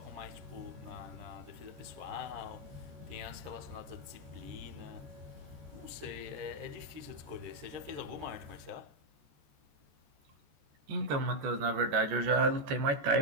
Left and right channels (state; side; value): late; left; 14 ms